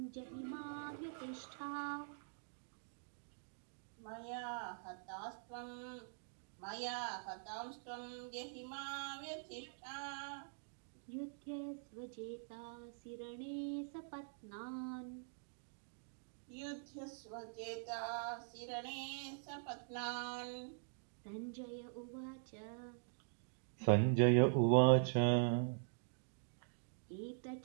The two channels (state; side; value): silent; left; digital silence